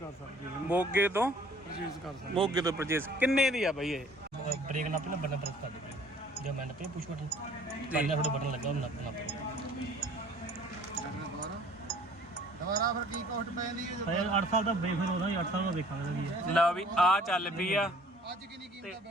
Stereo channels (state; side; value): normal; both; correlation 0.53